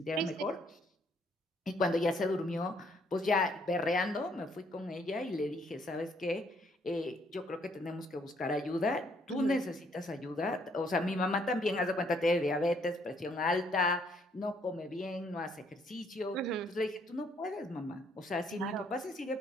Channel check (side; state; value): both; normal; correlation 0.68